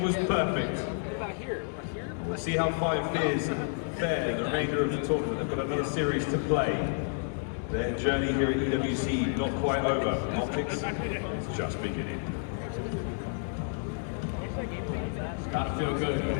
was perfect. We'll see how 5 Fears fare the remainder of the tournament. They've got another series to play. Their journey here at EWC not quite over. OpTic's is just beginning. It's gotta feel good.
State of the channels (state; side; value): silent; right; 58 dB below the other